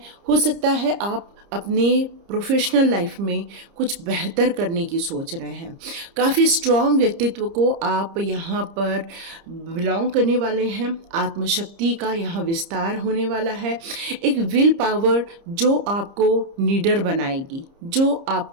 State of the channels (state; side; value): late; left; 30 ms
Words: हो सकता है आप अपने प्रोफेशनल लाइफ में कुछ बेहतर करने की सोच रहे हैं। काफ़ी स्ट्रॉन्ग व्यक्तित्व को आप यहाँ पर बिलोंग करने वाले हैं। आत्मशक्ति का यहाँ विस्तार होने वाला है। एक विल पावर जो आपको लीडर बनाएगी, जो